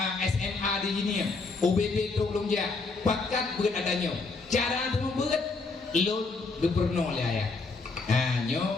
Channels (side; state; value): right; quieter; 3.9 dB